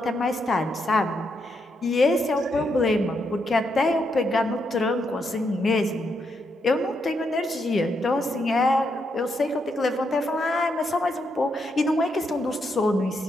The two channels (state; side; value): normal; both; correlation 0.80